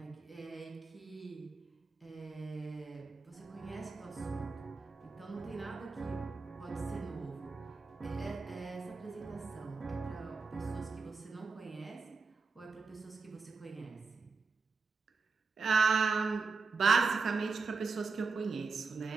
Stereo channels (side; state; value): left; quieter; 4.6 dB